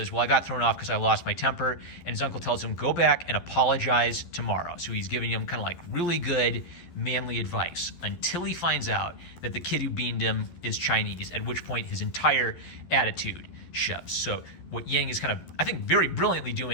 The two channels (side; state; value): right; late; 12 ms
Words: well, I got thrown off because I lost my temper. And his uncle tells him, go back and apologize tomorrow. So he's giving him kind of like really good manly advice until he finds out that the kid who beaned him is Chinese, at which point his entire attitude shifts. So what Yang is kind of, I think, very brilliantly